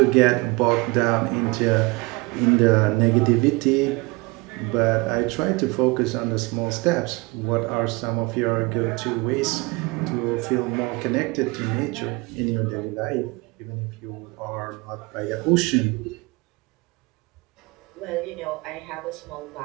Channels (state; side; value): quieter; left; 25.8 dB